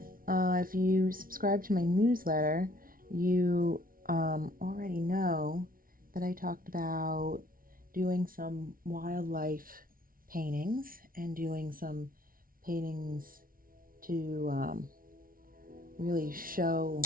If you subscribe to my newsletter, you already know that I talked about doing some wildlife paintings and doing some paintings to really show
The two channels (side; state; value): left; late; 0.42 ms